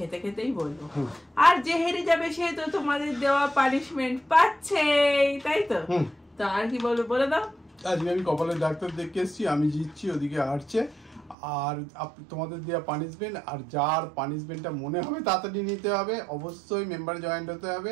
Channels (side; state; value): left; drops out; at 11.4 s